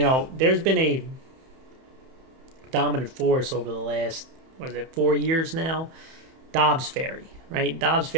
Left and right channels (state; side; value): late; left; 31 ms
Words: there's been a dominant force over the last, 4 years now? Dobbs Ferry, right? Dobbs